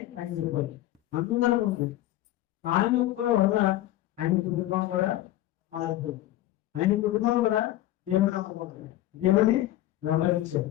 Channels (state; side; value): quieter; right; 14.8 dB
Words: ఆయన చెప్పాలి. అందరూ ఉంది. ఆయన ఒక్క వల్ల ఆయన కుటుంబం కూడా మారిపోతుంది. ఆయన కుటుంబం కూడా దేవుని నమ్మకం, దేవుని వెంబడించారు.